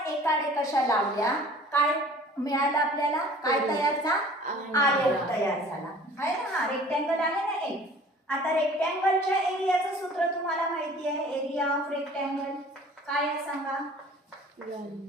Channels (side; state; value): both; normal; correlation 0.48